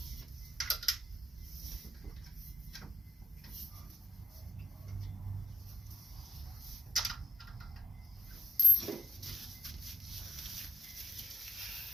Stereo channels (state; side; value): normal; both; correlation 0.84